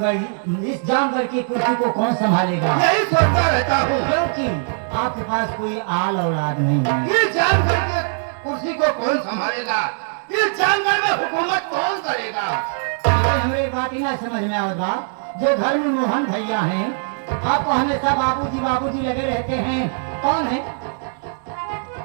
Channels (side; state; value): left; silent; digital silence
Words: जानवर की कुर्सी को कौन संभालेगा? यही सोचता रहता हूँ, क्योंकि आपके पास कोई आल औलाद नहीं है। ये जानवर के कुर्सी को कौन संभालेगा? ये जानवर में हुकूमत कौन करेगा? लेकिन हमें एक बात ही ना समझ में आवे बा, जो घर में मोहन भैया हैं, आपको हमेशा बाबूजी बाबूजी लगे रहते हैं, कौन है?